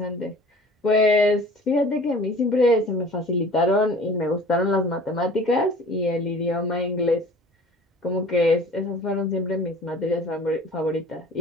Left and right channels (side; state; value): both; normal; correlation 0.46